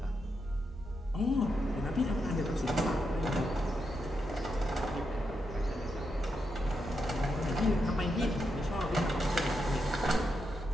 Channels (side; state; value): both; normal; correlation 0.84